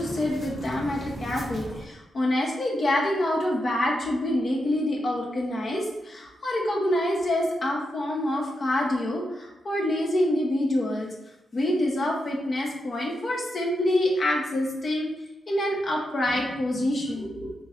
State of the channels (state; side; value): normal; both; correlation 0.85